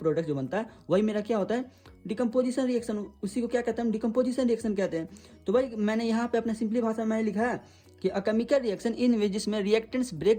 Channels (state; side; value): identical; both; correlation 1.00